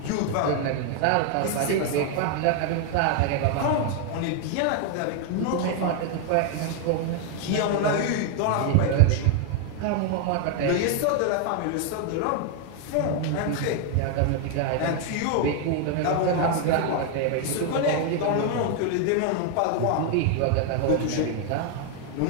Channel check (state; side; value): different; both; correlation 0.00